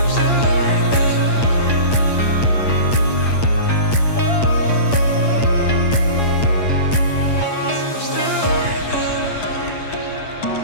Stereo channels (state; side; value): late; right; 8.6 ms